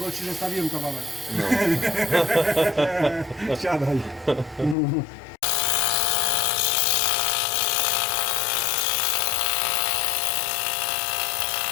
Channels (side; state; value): right; drops out; at 4.8 s